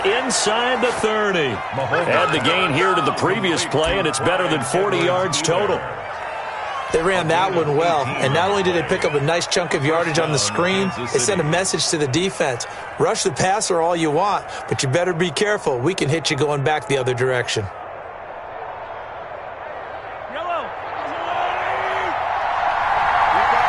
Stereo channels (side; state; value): both; identical; correlation 1.00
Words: the 30. Add the gain here to the previous play, and it's better than 40 yards total. They ran that one well, and not only did they pick up a nice chunk of yardage on the screen, they sent a message to the defense. Rush the passer all you want, but you better be careful. We can hit you going back the other direction.